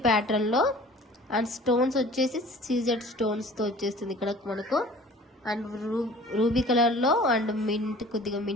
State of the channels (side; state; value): both; normal; correlation 0.46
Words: ప్యాటర్న్ లో అండ్ స్టోన్స్ వచ్చేసి సీజెడ్ స్టోన్స్ తో వచ్చేస్తుంది ఇక్కడ మనకు. అండ్ రూబీ కలర్ లో అండ్ మింట్, కొద్దిగా